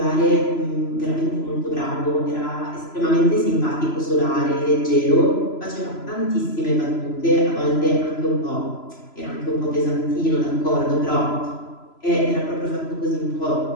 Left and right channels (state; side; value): late; right; 3.0 ms